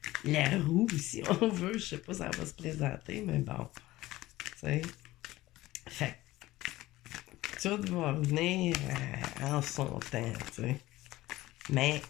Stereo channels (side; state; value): right; quieter; 17.3 dB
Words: la roue, si on veut. Je sais pas si ça va se présenter, mais bon. Tu sais. Fait que tout va venir en son temps, tu sais. Mais